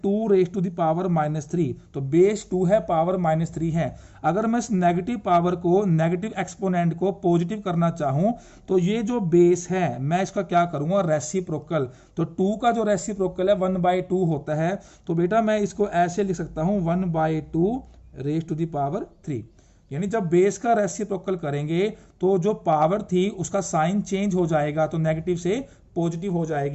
2 रेज टू द पावर -3, तो बेस 2 है, पावर -3 है। अगर मैं इस नेगेटिव पावर को, नेगेटिव एक्सपोनेंट को पॉजिटिव करना चाहूं, तो ये जो बेस है मैं इसका क्या करूंगा रेसिप्रोकल। तो 2 का जो रेसिप्रोकल है 1/2 होता है। तो बेटा मैं इसको ऐसे लिख सकता हूं 1/2 रेज टू द पावर 3। यानी जब बेस का रेसिप्रोकल करेंगे तो जो पावर थी उसका साइन चेंज हो जाएगा, तो नेगेटिव से पॉजिटिव हो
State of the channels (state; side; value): identical; both; correlation 1.00